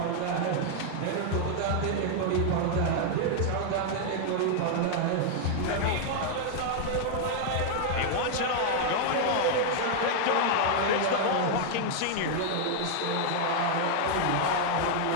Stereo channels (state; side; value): different; both; correlation 0.00